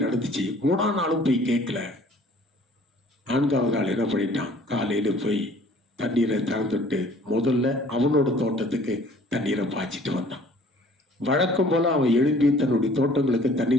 நடந்துச்சு. 3ஆம் நாளும் போய் கேட்கல. 4ஆவது நாள் என்ன பண்ணிட்டான், காலையில போய் தண்ணீரை திறந்துட்டு முதல்ல அவனோட தோட்டத்துக்கு தண்ணீரை பாய்ச்சிட்டு வந்தான். வழக்கம் போல அவன் எழும்பி தன்னுடைய தோட்டங்களுக்கு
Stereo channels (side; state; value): both; normal; correlation 0.53